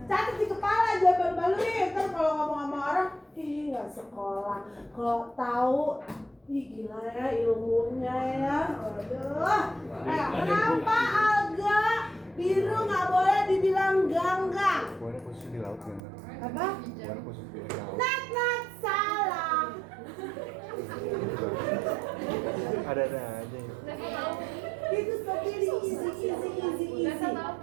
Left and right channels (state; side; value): drops out; left; at 16.0 s